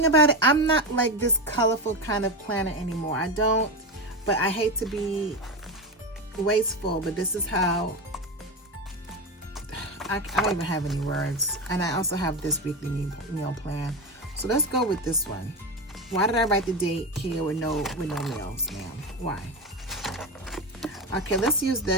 about it, I'm not like this colorful kind of planner anymore. I don't, but I hate to be wasteful, but this is how, I don't even have any words. And I also have this weekly meal plan. So let's go with this one. Why did I write the date here with no meals, ma'am? Why? Okay, let's use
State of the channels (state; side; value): normal; both; correlation 0.17